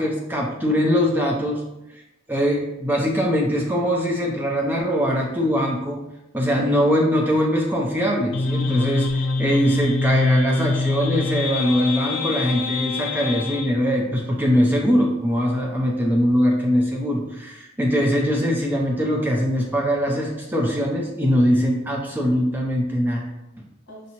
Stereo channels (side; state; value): both; normal; correlation 0.75